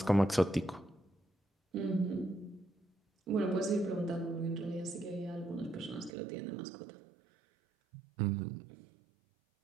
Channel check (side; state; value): left; drops out; at 6.1 s